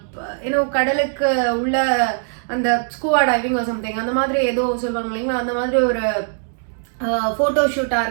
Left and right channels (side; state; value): left; silent; digital silence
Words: கடலுக்கு உள்ள அந்த ஸ்கூவா டைவிங் சம்திங் அந்த மாதிரி ஏதோ சொல்லுவாங்க இல்லைங்களா, அந்த மாதிரி ஒரு ஃபோட்டோ ஷூட்டாக